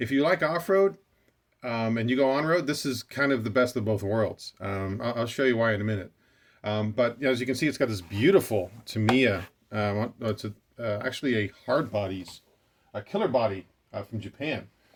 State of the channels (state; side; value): identical; both; correlation 1.00